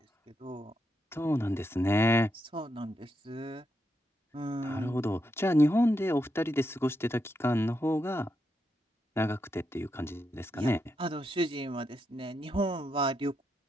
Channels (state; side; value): normal; both; correlation 0.83